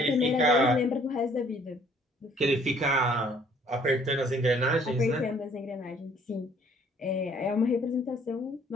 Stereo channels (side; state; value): both; normal; correlation 0.59